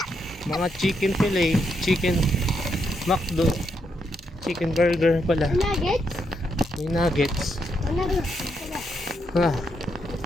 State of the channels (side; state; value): both; normal; correlation 0.80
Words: Mga chicken fillet, chicken McDo, chicken burger pala. Nuggets? May nuggets. Nuggets.